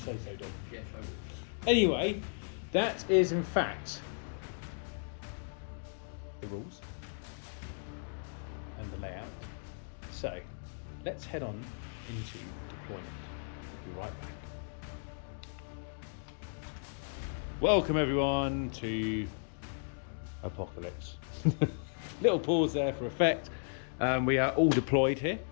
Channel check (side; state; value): right; silent; digital silence